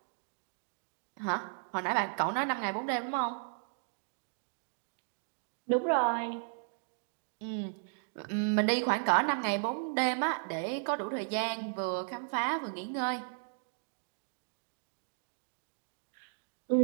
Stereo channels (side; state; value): left; silent; digital silence